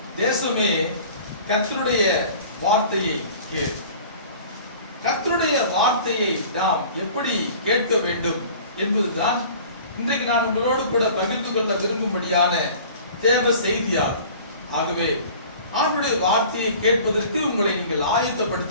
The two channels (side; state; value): both; inverted; correlation -0.45